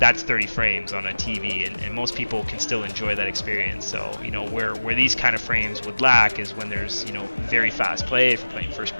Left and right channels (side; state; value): both; inverted; correlation -1.00